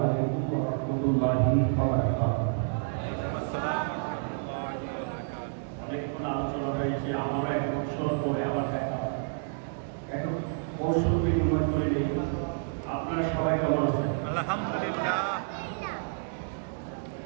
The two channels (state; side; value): silent; left; digital silence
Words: আলাইকুম ওয়া রাহমাতুল্লাহি ওয়া বারাকাতুহু। অনেকক্ষণ আলোচনা হয়েছে, আমরা 1 বছর পরে আবার দেখা একটু কৌশল বিনিময় করে নেই। আপনারা সবাই কেমন আছেন? আলহামদুলিল্লাহ।